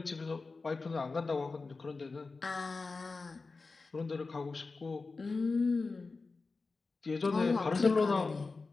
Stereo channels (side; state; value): right; quieter; 4.0 dB